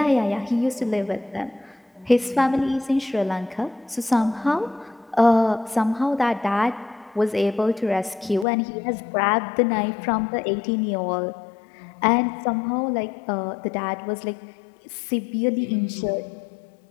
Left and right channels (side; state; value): right; drops out; at 8.5 s